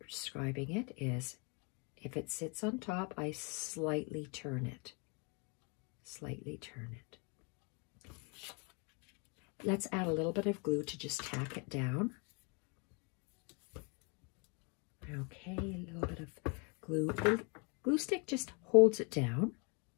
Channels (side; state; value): right; quieter; 33.6 dB